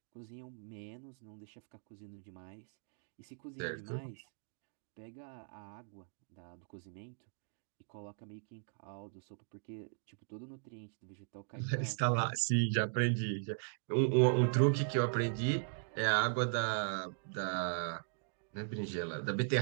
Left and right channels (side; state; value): left; silent; digital silence